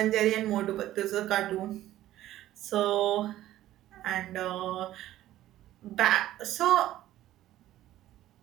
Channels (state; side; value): quieter; left; 14.0 dB